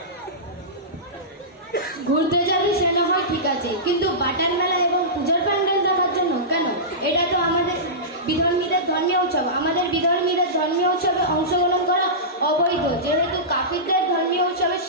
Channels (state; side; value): normal; both; correlation -0.18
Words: ঘুরতে যাবি সেটা হয় ঠিক আছে, কিন্তু বাটার মেলা এবং পূজার প্যান্ডেল দেখার জন্য কেন? এটা তো আমাদের বিধর্মীদের ধর্মীয় উৎসব। আমাদের বিধর্মীদের ধর্মীয় উৎসবে অংশগ্রহণ করা অবৈধ, যেহেতু কাফিরদের ধর্মীয় উৎসবে